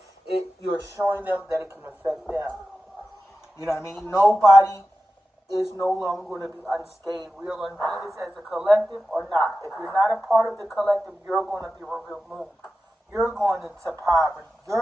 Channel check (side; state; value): both; normal; correlation 0.93